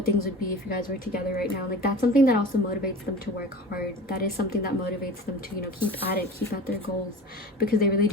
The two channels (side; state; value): both; normal; correlation 0.36